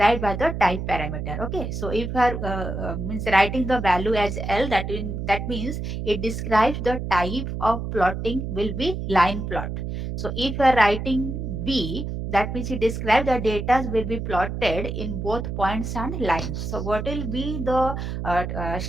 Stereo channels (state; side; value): noise; right; hum, 5 dB below the sound